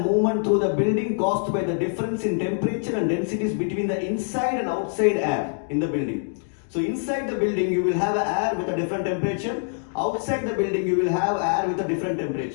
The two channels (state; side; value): silent; right; digital silence